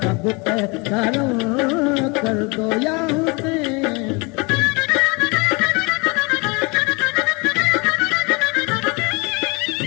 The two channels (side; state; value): right; quieter; 28.7 dB